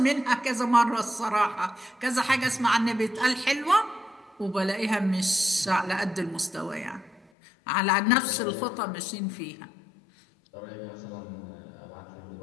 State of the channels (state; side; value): drops out; right; at 7.2 s